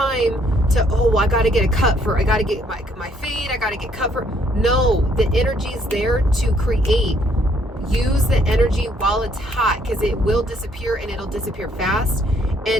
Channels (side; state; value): both; normal; correlation 0.67